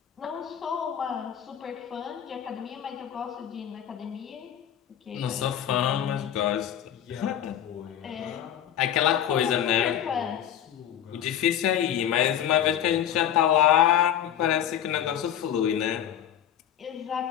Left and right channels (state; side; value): quieter; right; 10.2 dB